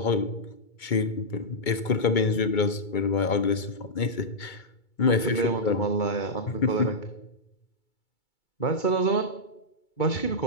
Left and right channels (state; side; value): late; right; 2.2 ms